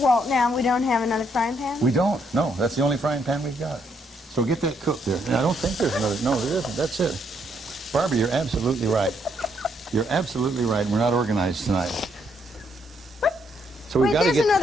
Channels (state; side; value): normal; both; correlation 0.73